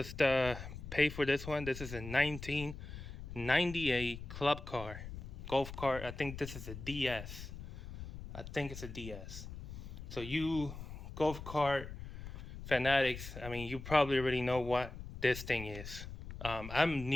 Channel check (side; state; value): left; noise; rumble, 10 dB below the sound